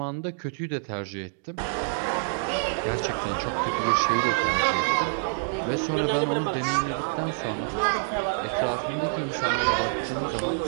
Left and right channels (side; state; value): left; silent; digital silence